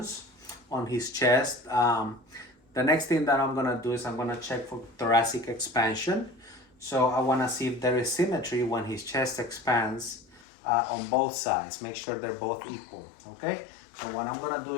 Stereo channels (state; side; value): drops out; right; at 10.5 s